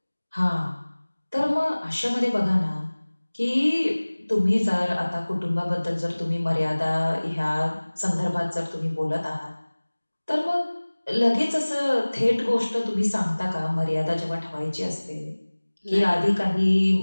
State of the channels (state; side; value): inverted; both; correlation -1.00